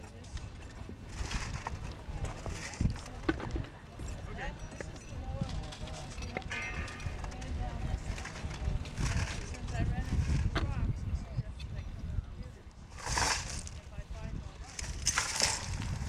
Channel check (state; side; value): identical; both; correlation 1.00